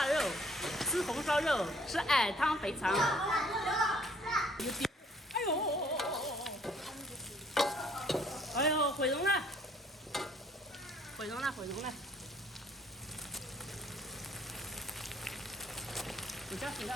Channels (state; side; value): normal; both; correlation 0.61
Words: 肉，吃红烧肉，吃矮汤肥肠。哎呦！哎呦，毁容了！毁容了！毁容了！你加水了